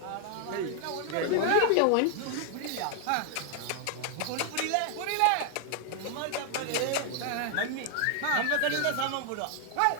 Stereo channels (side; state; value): both; different; correlation 0.00